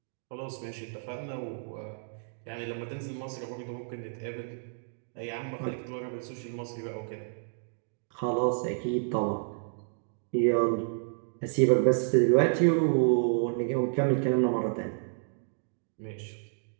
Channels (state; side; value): silent; left; digital silence